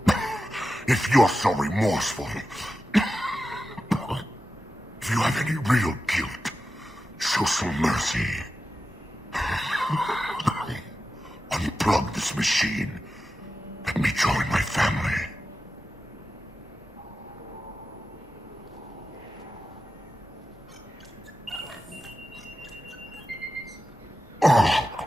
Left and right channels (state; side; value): normal; both; correlation 0.92